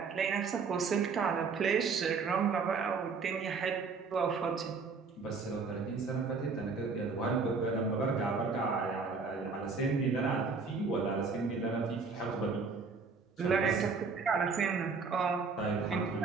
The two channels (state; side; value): quieter; left; 4.8 dB